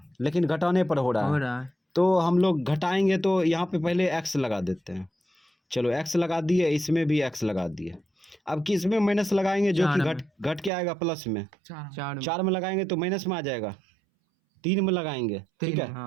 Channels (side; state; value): left; drops out; at 10.7 s